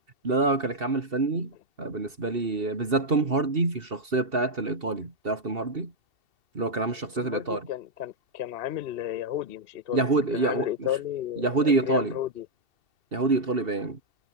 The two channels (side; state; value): left; late; 2.7 ms